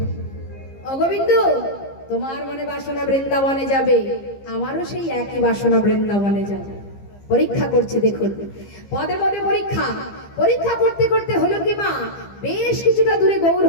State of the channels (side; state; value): right; late; 15 ms